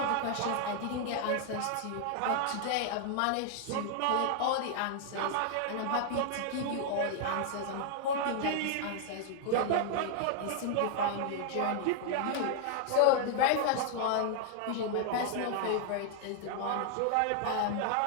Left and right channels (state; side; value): different; both; correlation 0.00